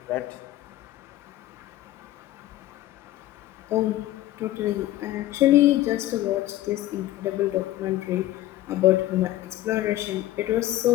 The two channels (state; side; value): quieter; right; 14.9 dB